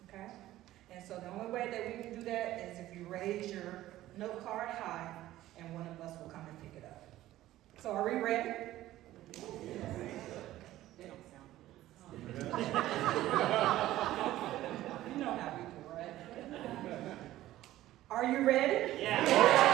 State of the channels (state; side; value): quieter; left; 14.9 dB